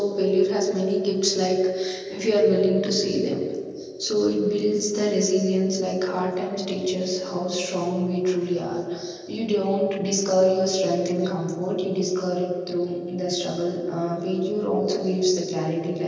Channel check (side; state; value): both; identical; correlation 1.00